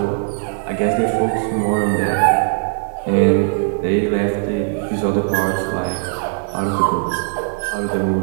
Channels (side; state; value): left; silent; 65 dB below the other